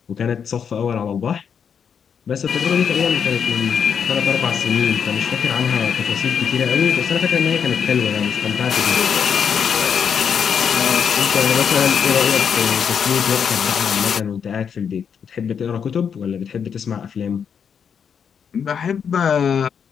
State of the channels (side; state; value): right; quieter; 7.2 dB